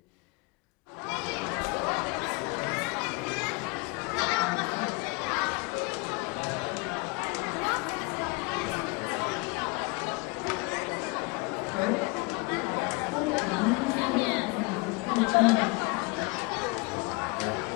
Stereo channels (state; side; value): quieter; right; 27.3 dB